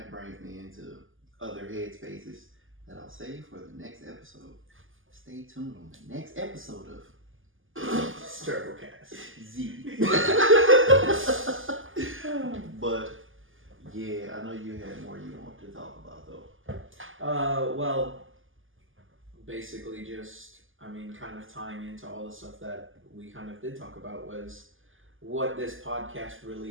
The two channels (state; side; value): late; left; 0.58 ms